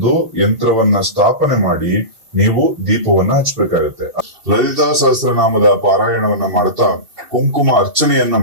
ಯಂತ್ರವನ್ನ ಸ್ಥಾಪನೆ ಮಾಡಿ ನೀವು ದೀಪವನ್ನ ಹಚ್ಚಬೇಕಾಗುತ್ತೆ. ಲಲಿತಾ ಸಹಸ್ರನಾಮದ ಪಾರಾಯಣವನ್ನ ಮಾಡ್ತಾ ಕುಂಕುಮ ಅರ್ಚನೆಯನ್ನ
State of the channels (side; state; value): left; late; 2.7 ms